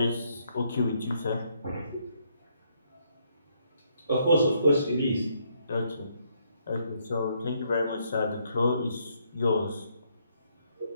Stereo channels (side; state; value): both; inverted; correlation -0.73